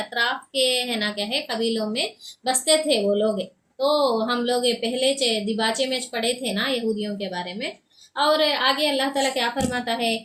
के है ना क्या है कबीलों में बसते थे वो लोग। तो हम लोग ये पहले दिबाचे में पढ़े थे ना यहूदियों के बारे में। और आगे अल्लाह ताला क्या फरमाता है,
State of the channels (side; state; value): both; identical; correlation 1.00